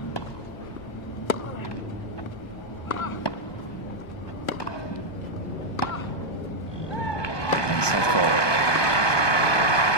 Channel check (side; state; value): right; late; 1.2 ms